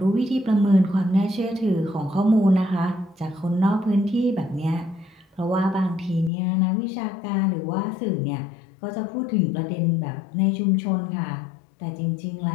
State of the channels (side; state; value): right; drops out; at 6.3 s